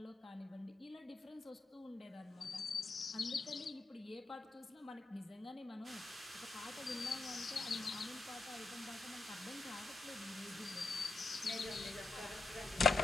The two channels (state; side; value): quieter; right; 3.6 dB